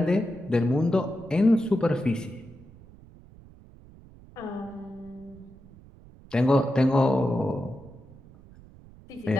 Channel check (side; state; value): right; noise; rumble, 22 dB below the sound